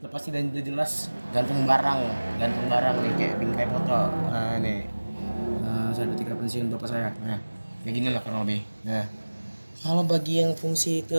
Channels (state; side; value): inverted; both; correlation -1.00